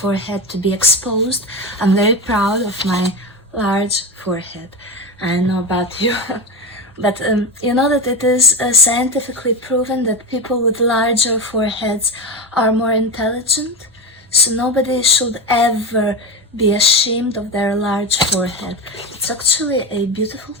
to be exposed. I'm very proud of my large forehead. I don't know about you. But you know that it is scientifically proven that people with larger foreheads are more intelligent. So nobody should ever be ashamed of their large forehead. It's actually a beautiful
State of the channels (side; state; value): both; normal; correlation 0.19